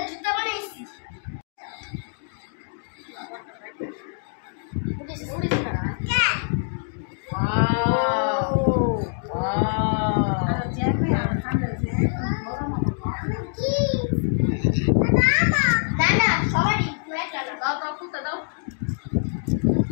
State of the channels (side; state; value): right; silent; digital silence